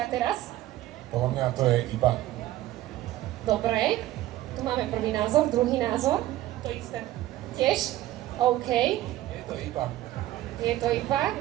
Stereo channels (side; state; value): left; quieter; 15.1 dB